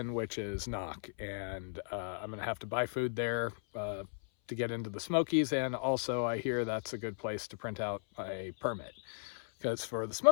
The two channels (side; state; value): right; silent; 53 dB below the other